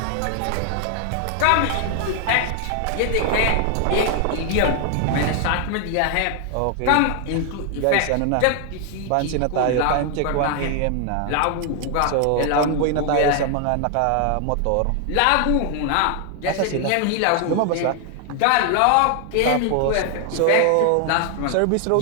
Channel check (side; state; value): both; different; correlation 0.00